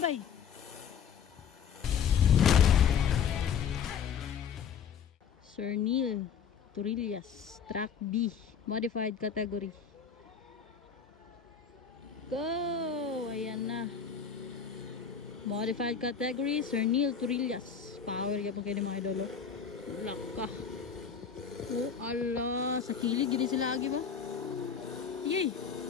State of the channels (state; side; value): quieter; right; 6.9 dB